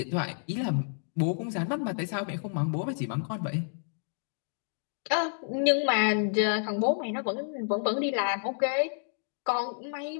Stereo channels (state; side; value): silent; right; digital silence